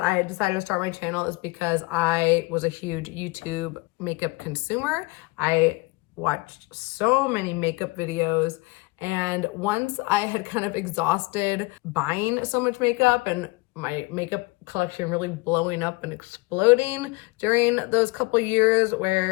I decided to start my channel is because I was a huge YouTube makeup consumer. I watched so many makeup videos, And once I had kind of exhausted buying so much makeup and my makeup collection really blowing up and exploding during those couple years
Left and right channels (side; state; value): right; quieter; 23.9 dB